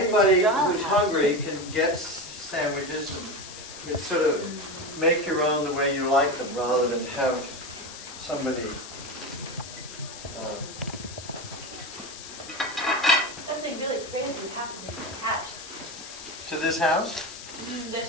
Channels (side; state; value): left; noise; hiss, 13 dB below the sound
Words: dollhouse. who's hungry can get sandwiches and sort of make your own the way you like them rather than have somebody, something really crazy happened in the hatch. to this house?